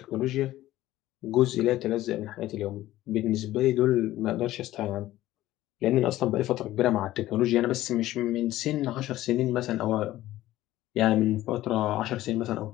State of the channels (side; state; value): right; quieter; 15.2 dB